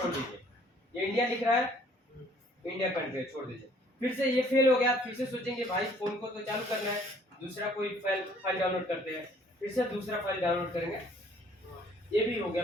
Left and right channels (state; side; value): normal; both; correlation 0.59